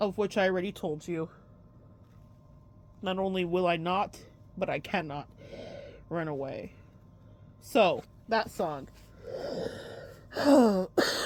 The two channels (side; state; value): both; identical; correlation 1.00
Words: of which I already told you. Not only will I not, but I cannot run away. So, that song.